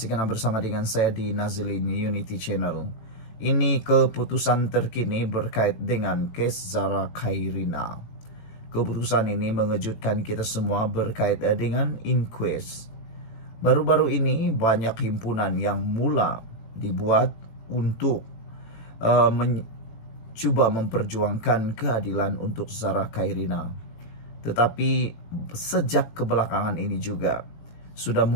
karena bersama dengan saya di Nazilin Unity Channel. Ini keputusan terkini berkait dengan kes Zara Khairina. Keputusan ini mengejutkan kita semua berkait dengan inquest. Baru-baru ini banyak himpunan yang mula dibuat untuk mencoba memperjuangkan keadilan untuk Zara Khairina. Tetapi sejak kebelakangan ini juga sudah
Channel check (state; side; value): late; right; 18 ms